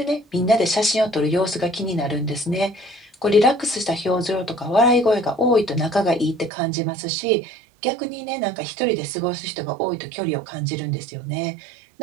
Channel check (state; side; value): drops out; left; at 6.5 s